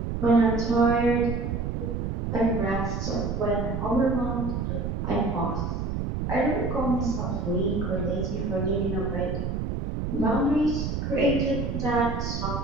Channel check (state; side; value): noise; right; rumble, 2 dB below the sound